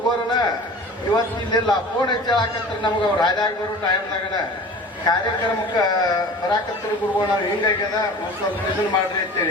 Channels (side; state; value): both; normal; correlation 0.40